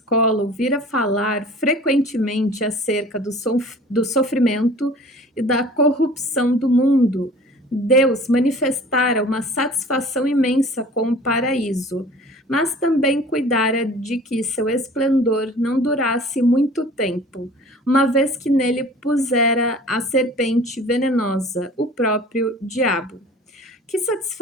ouvira falar frequentemente acerca do sofrimento e da corrupção do mundo. Deus manifestara uma satisfação imensa com o paraíso, mas também cuidara de que seu esplendor não durasse muito tempo, uma vez que nele pusera a serpente venenosa, o próprio diabo. Que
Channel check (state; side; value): normal; both; correlation 0.46